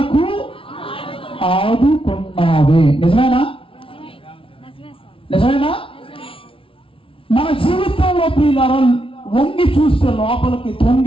ఆదుకున్నావే. నిజమేనా? నిజమేనా? మన జీవితంలో ప్రియులారా వంగి చూస్తే, లోపలికి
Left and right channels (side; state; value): right; late; 0.26 ms